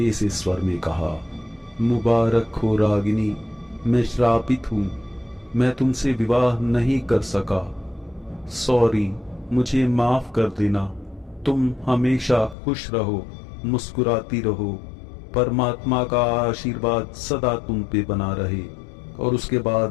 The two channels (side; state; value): right; drops out; at 12.6 s